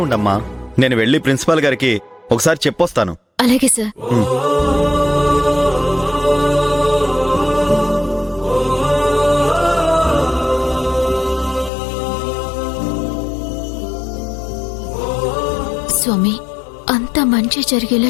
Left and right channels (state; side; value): drops out; right; at 11.7 s